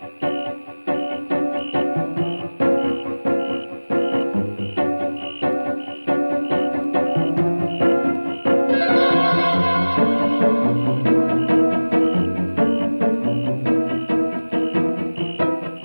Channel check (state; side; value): inverted; both; correlation -1.00